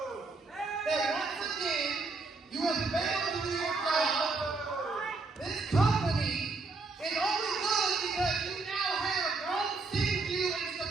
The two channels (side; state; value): left; quieter; 3.8 dB